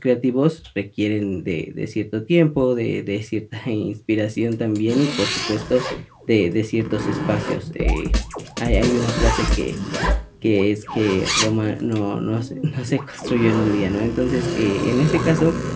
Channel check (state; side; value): identical; both; correlation 1.00